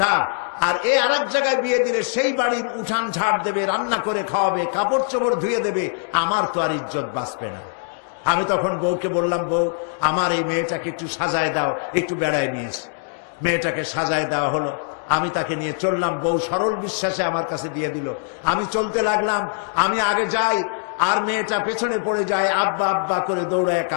আর এ আরেক জায়গায় বিয়ে দিলে সেই বাড়ির উঠান ঝাড় দেবে, রান্না করে খাওয়াবে, কাপড় চোপড় ধুয়ে দেবে, আমার তো আর ইজ্জত বাঁচবে না। আমি তখন বউকে বললাম, বউ, আমার এই মেয়েটাকে একটু সাজায় দাও, একটু বেড়ায় নিয়েছে। মেয়েটাকে সাজায় দেওয়া হলো, আমি তাকে নিয়ে চললাম। বউ সরল বিশ্বাসে আমার কাছে দিয়ে দিল। আমি চলতে লাগলাম, আমি আগে যাই আর মেয়েটা পেছনে পড়ে যায়, আব্বা আব্বা করে দৌড়ায়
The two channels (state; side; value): silent; right; digital silence